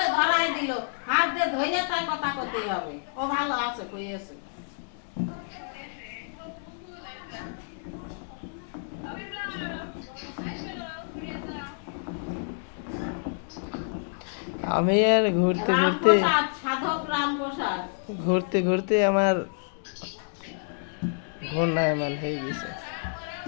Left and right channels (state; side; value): silent; right; digital silence